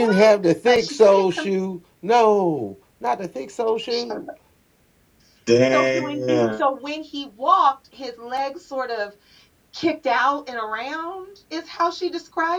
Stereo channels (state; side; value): identical; both; correlation 1.00